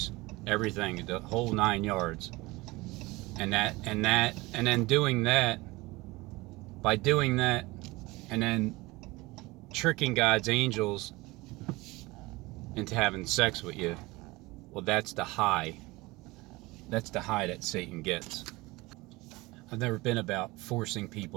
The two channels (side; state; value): left; quieter; 21.8 dB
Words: everything, the whole 9 yards. And then doing that, by doing that, and then tricking God's angels into having sex with you, well, that's the high. That's the high that Satan gets. I've never been about forcing